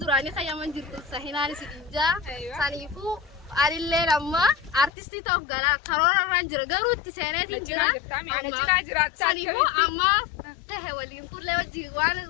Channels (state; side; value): drops out; right; at 4.9 s